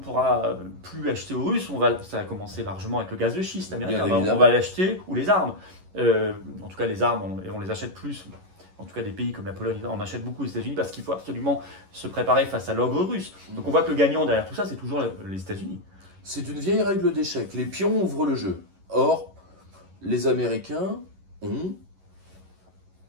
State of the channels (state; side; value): late; left; 11 ms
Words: plus acheter aux Russes, ça va commencer largement avec le gaz de schiste américain. On va l'acheter, ou les armes. En tout cas, les armes, on les achète plus. En tout cas, des pays comme la Pologne, on achète beaucoup aux États-Unis parce qu'il faut absolument se préparer face à l'ogre russe. Donc on voit que le gagnant derrière tout ça, c'est toujours les États-Unis. C'est une vieille règle d'échec. Les pions ouvrent le jeu. Or, les Américains ont